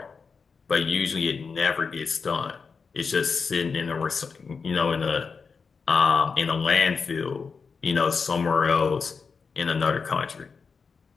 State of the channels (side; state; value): right; quieter; 5.2 dB